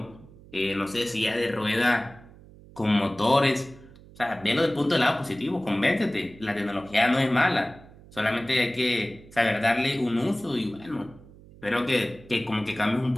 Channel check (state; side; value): noise; right; hum, 22 dB below the sound